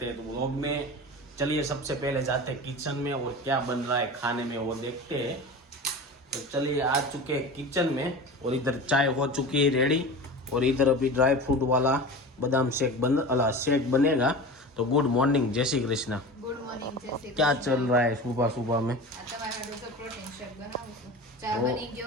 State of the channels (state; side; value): normal; both; correlation 0.32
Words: हैं। तो व्लॉग में चलिए सबसे पहले जाते हैं किचन में और क्या बन रहा है खाने में वो देखते हैं। तो चलिए आ चुके हैं किचन में और इधर चाय हो चुकी है रेडी और इधर अभी ड्राई फ्रूट वाला बादाम शेक बनेगा। तो गुड मॉर्निंग, जय श्री कृष्णा। गुड मॉर्निंग, जय श्री क्या कृष्ण। चल रहा है सुबह सुबह में? प्रोटीन शेक बनाવું છું। ચા બની ગયો?